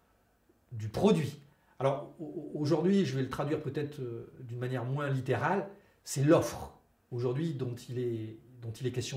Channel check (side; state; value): both; identical; correlation 1.00